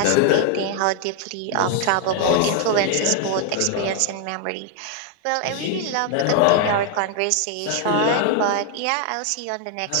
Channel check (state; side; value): different; both; correlation 0.00